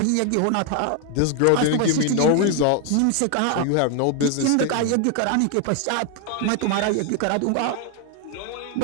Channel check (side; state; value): both; different; correlation 0.01